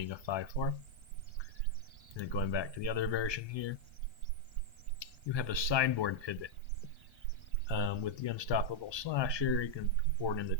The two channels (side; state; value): right; late; 1.2 ms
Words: a 5/4. And then going back to the other version here, you have a sideboard pivot. With the Unstoppable Slasher, you can board in the